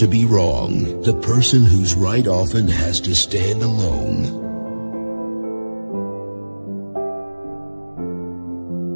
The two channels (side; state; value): both; inverted; correlation -1.00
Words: be wrong. The person who's right often has to stand alone.